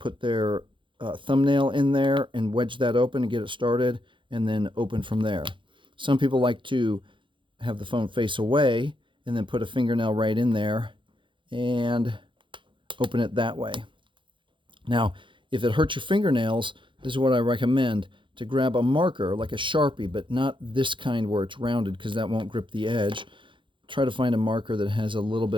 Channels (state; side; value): late; left; 0.24 ms